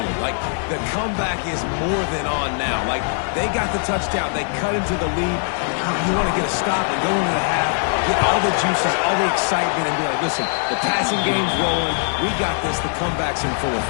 Like, the comeback is more than on now. Like, they got the touchdown. They cut into the lead. You want to get a stop and go into the half, get all the juices, all the excitement, and be like, listen, the passing game's rolling. We got this. The comeback's in full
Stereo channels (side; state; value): right; silent; 64 dB below the other